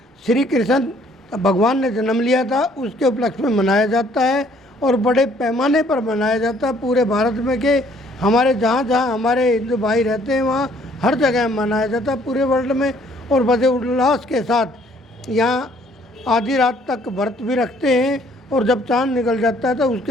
श्री कृष्ण भगवान ने जन्म लिया था, उसके उपलक्ष्य में मनाया जाता है और बड़े पैमाने पर मनाया जाता है पूरे भारत में। के हमारे जहाँ जहाँ हमारे हिंदू भाई रहते हैं वहाँ हर जगह मनाया जाता है पूरे वर्ल्ड में, और बड़े उल्लास के साथ यहाँ आधी रात तक व्रत भी रखते हैं, और जब चांद निकल जाता है तो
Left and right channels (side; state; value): both; normal; correlation 0.62